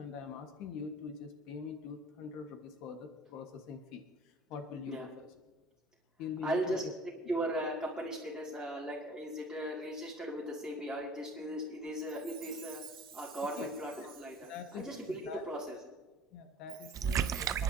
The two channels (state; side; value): normal; both; correlation 0.47